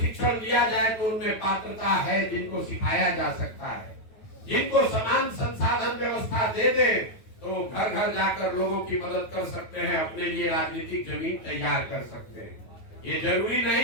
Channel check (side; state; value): right; late; 9.3 ms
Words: दिया जाए तो उनमें पात्रता है, जिनको सिखाया जा सकता है, जिनको समान संसाधन व्यवस्था दे दे तो घर घर जाकर लोगों की मदद कर सकते हैं, अपने लिए राजनीतिक जमीन तैयार कर सकते हैं। ये जरूरी नहीं